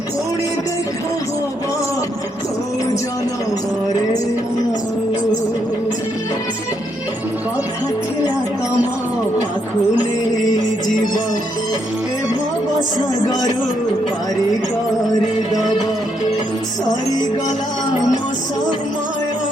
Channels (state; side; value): normal; both; correlation 0.76